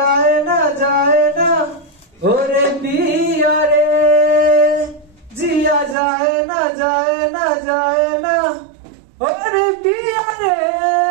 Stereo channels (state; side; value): drops out; left; at 6.0 s